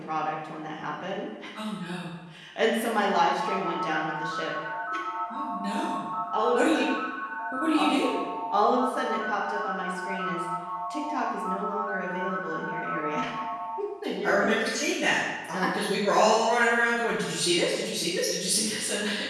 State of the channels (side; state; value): both; identical; correlation 1.00